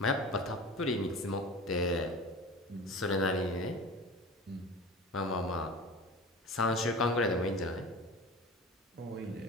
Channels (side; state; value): both; normal; correlation 0.35